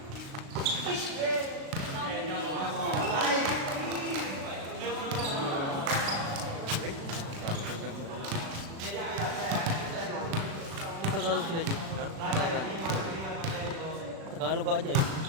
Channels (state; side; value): late; left; 36 ms